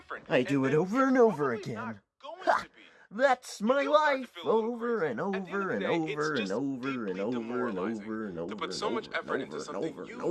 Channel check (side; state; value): both; identical; correlation 1.00